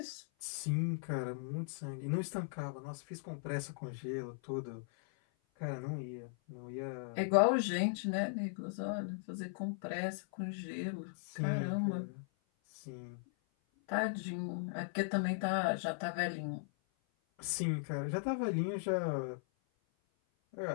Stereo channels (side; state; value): right; silent; 52 dB below the other